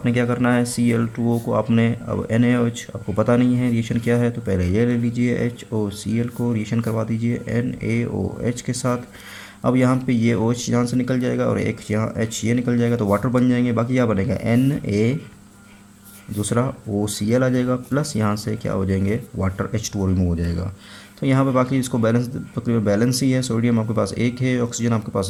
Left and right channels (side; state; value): both; identical; correlation 1.00